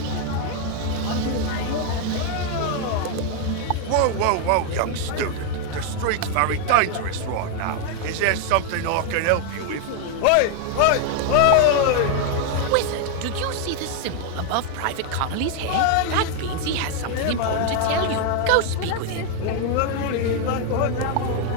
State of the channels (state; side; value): different; both; correlation 0.00